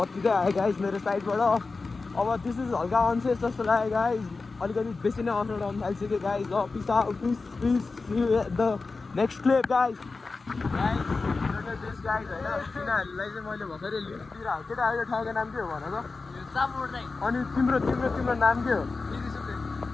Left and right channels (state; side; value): quieter; right; 4.0 dB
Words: आयो गाइज मेरो साइडबाट। अब दिस इज हल्का अनसेफ जस्तो लाग्यो गाइज। अलिकति बेसी नै अफ रोड आउनु थालिसक्यो गाइज। ल peace out. Peace the next clip guys. This guys होइन, तिनीहरूलाई चाहिँ मैले भर्खरै लिस्टतिर केटाहरूको ठाउँको नाम के हो भन त? अनि तिम्रो नाम के हो?